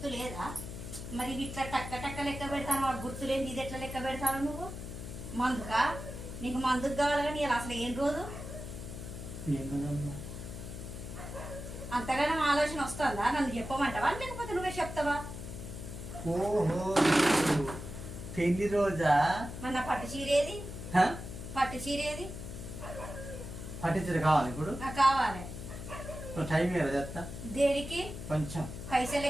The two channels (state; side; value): noise; left; hum, 9 dB below the sound